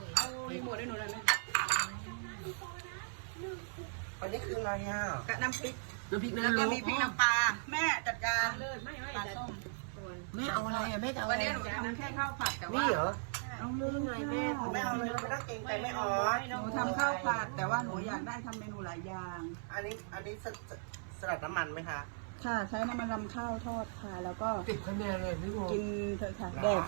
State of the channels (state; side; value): silent; left; 53 dB below the other